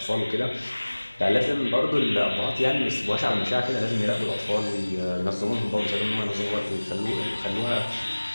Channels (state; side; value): inverted; both; correlation -1.00